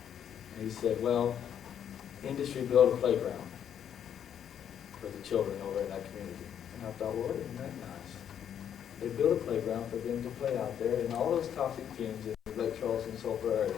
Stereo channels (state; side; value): quieter; right; 9.1 dB